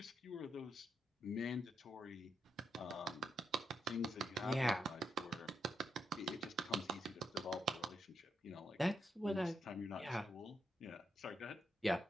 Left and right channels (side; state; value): both; normal; correlation 0.82